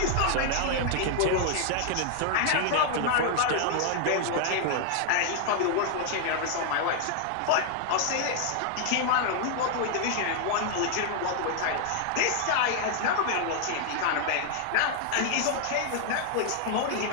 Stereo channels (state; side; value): different; both; correlation 0.00